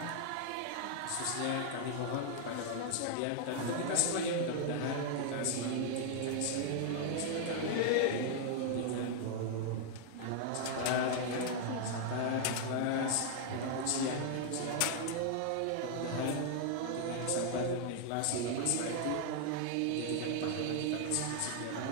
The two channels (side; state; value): both; different; correlation 0.00